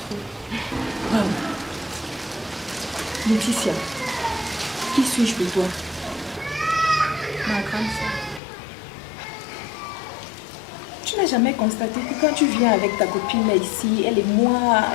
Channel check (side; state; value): right; drops out; at 8.4 s